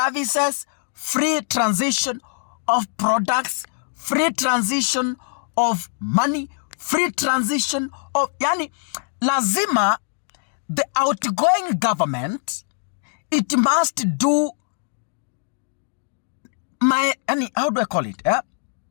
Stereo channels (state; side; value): silent; right; digital silence